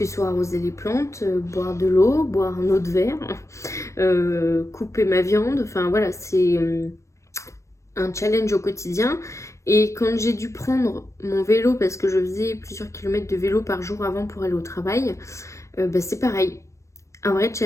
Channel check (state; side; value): late; right; 0.14 ms